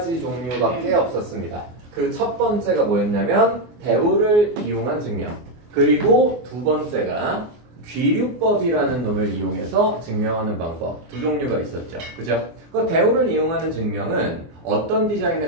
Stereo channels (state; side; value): late; left; 24 ms